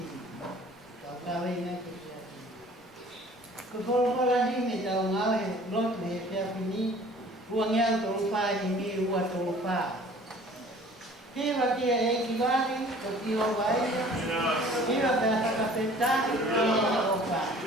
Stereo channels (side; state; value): both; normal; correlation 0.50